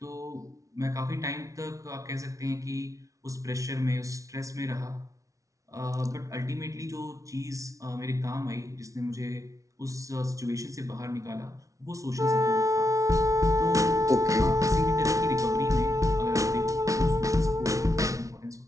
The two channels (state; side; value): late; left; 0.16 ms